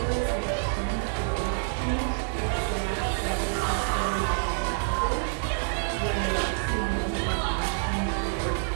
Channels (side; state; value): left; silent; digital silence